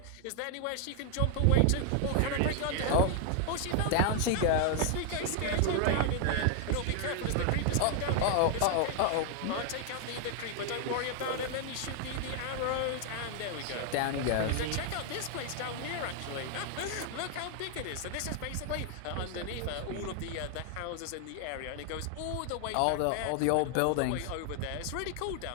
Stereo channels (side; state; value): both; different; correlation 0.00